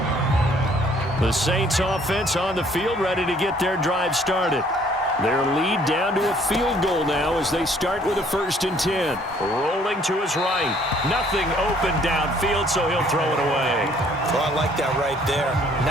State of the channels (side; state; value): both; normal; correlation 0.60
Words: The Saints offense on the field ready to get their drive started. Their lead down to a field goal now as they start with a 1st and 10. Rolling to his right. Nothing open downfield, so he'll throw it away. Well, I like that right there.